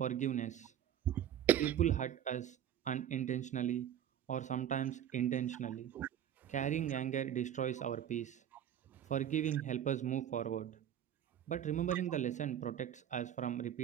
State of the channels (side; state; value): left; quieter; 10.3 dB